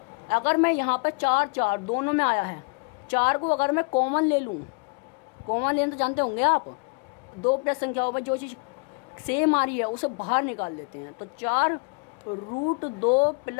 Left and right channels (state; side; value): quieter; right; 32.7 dB